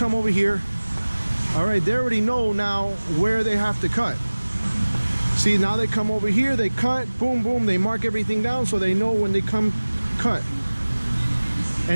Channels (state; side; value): inverted; both; correlation -1.00